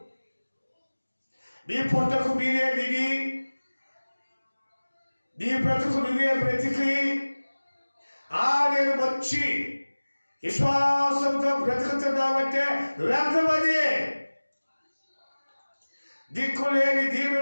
నీ పొట్టకు మీరే దిగి, నీ బ్రతుకు నువ్వే బ్రతికి, నేను వచ్చి విశ్వాసంతో బ్రతుకుతున్నావంటే వ్యర్థమది. దిక్కులేని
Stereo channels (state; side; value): inverted; both; correlation -1.00